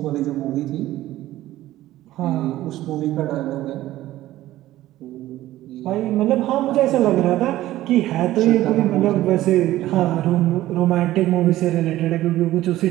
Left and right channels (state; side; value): quieter; left; 15.1 dB